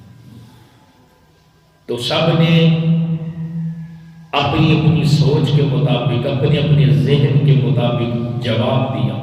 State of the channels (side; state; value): both; identical; correlation 1.00